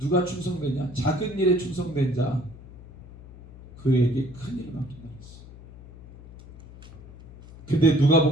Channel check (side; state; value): left; noise; hum, 18 dB below the sound